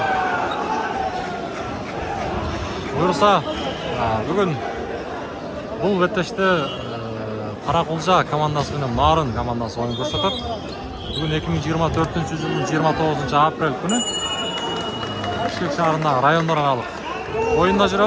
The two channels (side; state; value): both; identical; correlation 1.00